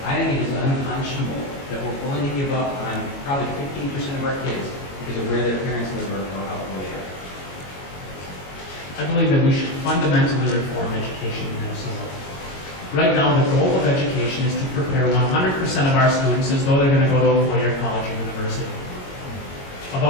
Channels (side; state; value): right; late; 22 ms